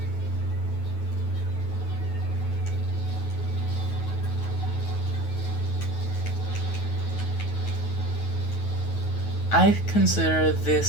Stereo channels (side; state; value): right; late; 9.3 ms